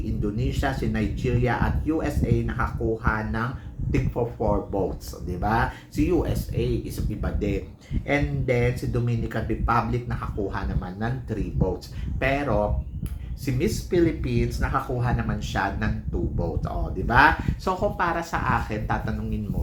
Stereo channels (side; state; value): both; identical; correlation 1.00